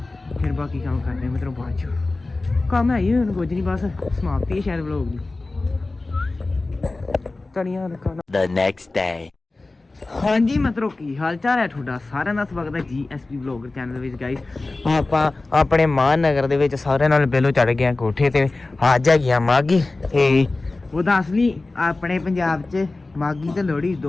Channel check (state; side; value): quieter; right; 3.2 dB